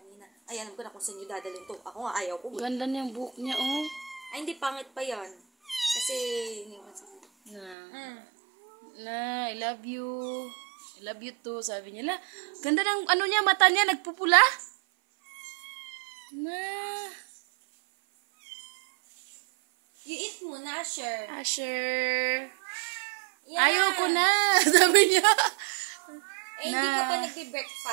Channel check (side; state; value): left; drops out; at 7.8 s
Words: Ay, alam ko na kung saan niyo dadalhin to. Ako nga, ayaw ko. Ganda niyang buhok niya, oh. Ay, hindi, pangit pa yan. Kasi, Na, I love you. I love you too, sabi niya. La, ganda ng ano niya, mata niya, nagpupula. Na. You eat muna, Asher. Asher. Yeah. Ayoko na, sabi niya. Eh, hindi ka pa